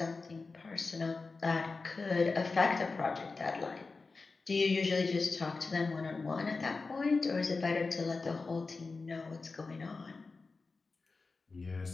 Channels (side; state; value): right; quieter; 4.0 dB